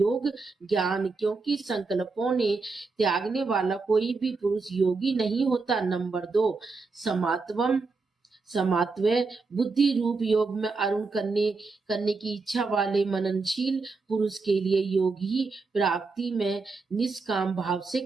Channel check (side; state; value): left; quieter; 4.1 dB